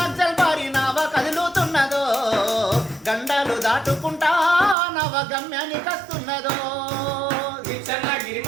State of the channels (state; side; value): drops out; left; at 4.8 s